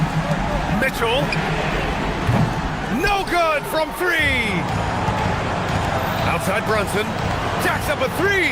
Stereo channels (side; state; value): both; identical; correlation 1.00